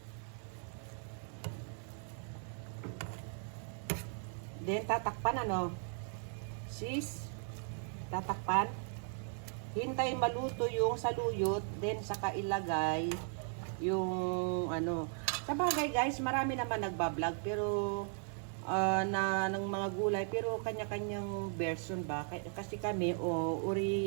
Then, tatakpan ano? Sis, tatakpan. Hintay maluto yung saluyot. Then, saka ilagay yung ano. Sa bagay guys, marami naman nagbablog. Pero, ng mga gulay. Pero, kanya-kanyang version ba? Kasi kami,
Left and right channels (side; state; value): left; silent; 53 dB below the other